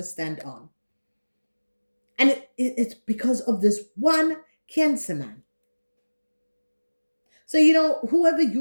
stand on. And it's because of this one Cancer man. So, whoever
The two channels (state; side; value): inverted; both; correlation -1.00